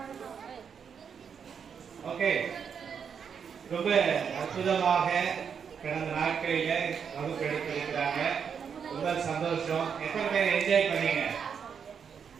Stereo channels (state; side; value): quieter; left; 7.0 dB